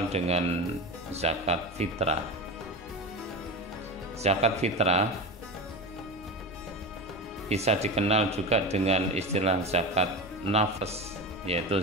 dengan zakat fitrah. Zakat fitrah bisa dikenal juga dengan istilah zakat nafas, yaitu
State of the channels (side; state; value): both; normal; correlation 0.24